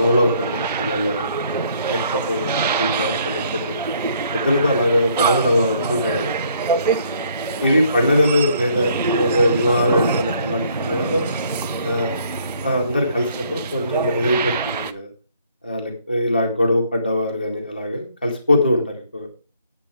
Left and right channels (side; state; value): both; inverted; correlation -0.65